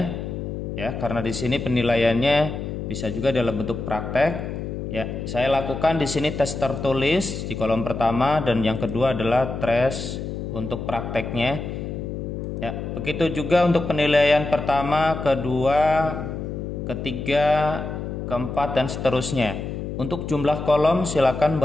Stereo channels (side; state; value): left; noise; hum, 6 dB below the sound